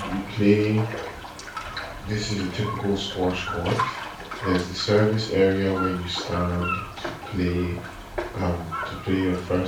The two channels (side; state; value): both; identical; correlation 1.00